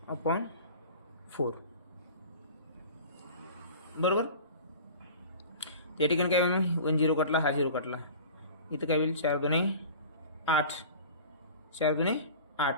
5/4. बरोबर. या ठिकाणी काय होईल? 1 0 कटला, हा 0 कटला. इथं काय होईल? 4 2 8 4 2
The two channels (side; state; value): both; inverted; correlation -0.40